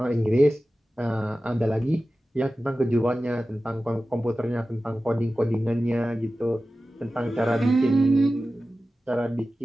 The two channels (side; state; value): both; normal; correlation 0.95